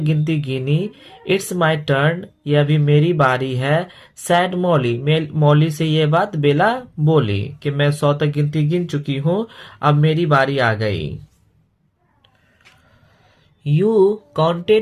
गिनी। इट्स माई टर्न, ये अभी मेरी बारी है। सैड मॉली से ये बात बेला बोली कि मैं 100 तक गिनती गिन चुकी हूँ, अब मेरी बारी आ गई। You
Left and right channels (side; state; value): both; identical; correlation 1.00